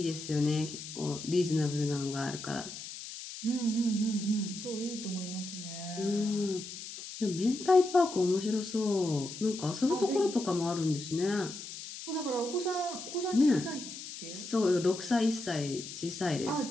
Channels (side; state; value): left; noise; hiss, 10 dB below the sound